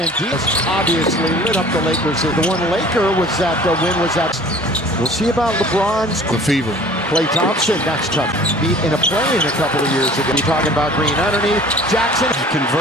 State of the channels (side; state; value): both; normal; correlation 0.47